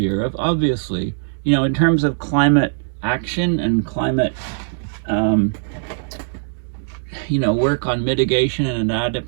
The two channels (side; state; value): left; silent; digital silence